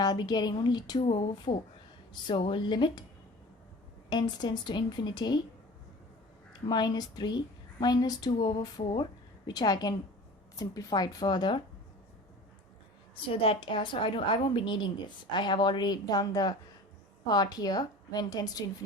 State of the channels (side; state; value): both; normal; correlation 0.40